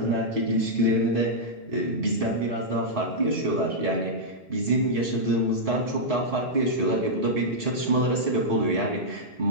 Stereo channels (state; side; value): normal; both; correlation -0.08